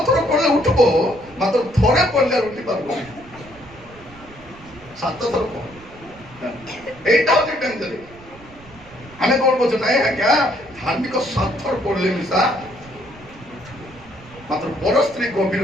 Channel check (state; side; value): noise; right; rumble, 22 dB below the sound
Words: ଥର ପଢିଲେ ଉଠିବ ମାତ୍ର ଥରେ ପଢିଲେ ଉଠି ପାରିବନି 7 ଥର ପଢ এইটা হচ্ছে ডেঞ্জার আমি কোন বলছি নাই আজ্ঞা ধার্মিক 7 ଥର পড়লে মিশা মাত্র বড় স্ত্রী গভীর